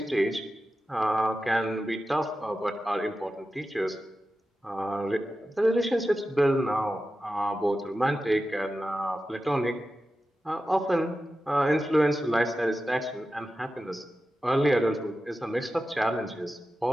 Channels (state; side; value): normal; both; correlation 0.92